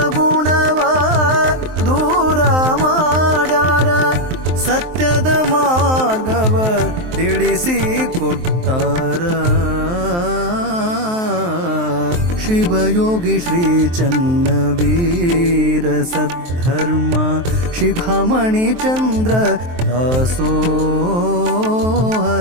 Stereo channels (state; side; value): late; left; 23 ms